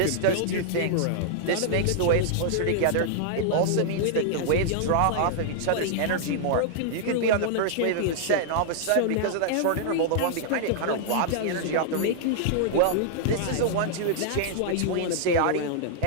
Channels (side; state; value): both; different; correlation -0.01